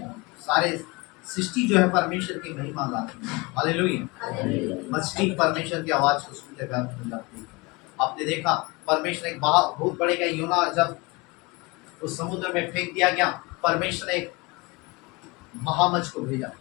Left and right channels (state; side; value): quieter; right; 25.3 dB